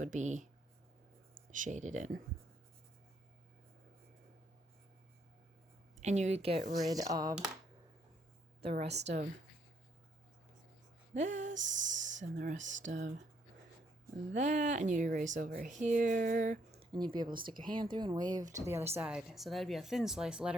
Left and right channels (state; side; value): normal; both; correlation 0.71